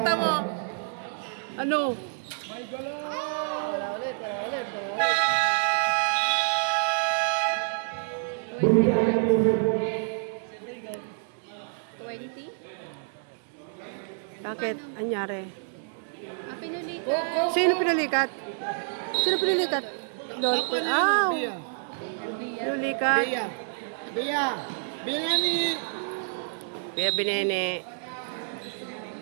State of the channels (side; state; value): left; silent; digital silence